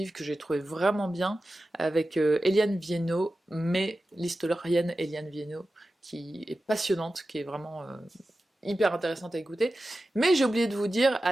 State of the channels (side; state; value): both; normal; correlation 0.94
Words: que j'ai trouvé vraiment bien, avec Eliane Viennot, mais l'historienne Eliane Viennot, qui est passionnante, qui est vraiment hyper intéressante à écouter. Mais j'ai oublié de vous dire,